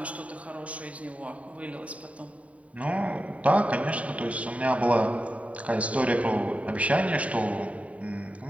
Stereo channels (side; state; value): left; late; 0.067 ms